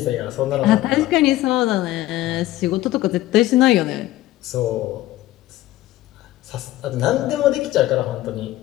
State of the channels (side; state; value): right; quieter; 15.6 dB